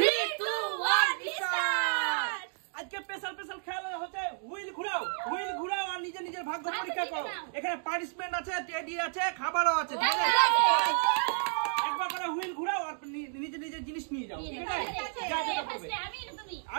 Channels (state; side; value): silent; left; digital silence